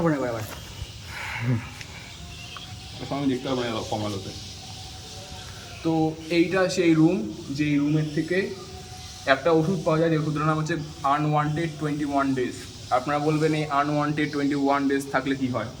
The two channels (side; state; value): both; identical; correlation 1.00